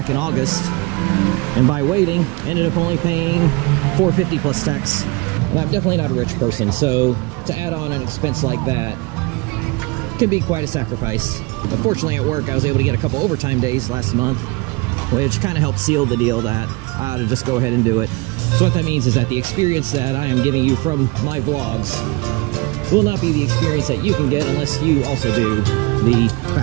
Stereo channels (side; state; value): left; quieter; 26.1 dB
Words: in August, and by waiting ended up only paying $450 plus tax. And I'm definitely not a rich person, so to add on an expense like that can be quite a sacrifice. But fortunately at work I was able to get a couple overtime days last month, which kind of helped seal the deal that I ought to just go ahead and do it. So what that means is that the experience that I am giving you from my vlogs will not be the experience that you can get unless you also do the